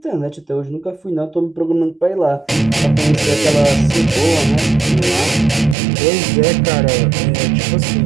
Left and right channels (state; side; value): drops out; left; at 5.8 s